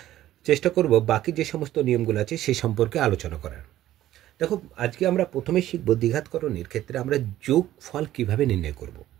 চেষ্টা করব বাকি যে সমস্ত নিয়মগুলো আছে সেই সম্পর্কে আলোচনা করার। দেখো, আজকে আমরা প্রথমে শিখব দ্বিঘাতকরণের ক্ষেত্রে আমরা যোগফল কিভাবে নির্ণয় করব।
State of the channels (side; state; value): left; quieter; 13.7 dB